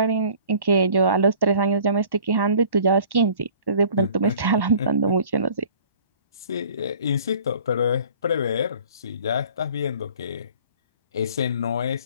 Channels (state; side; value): inverted; both; correlation -0.50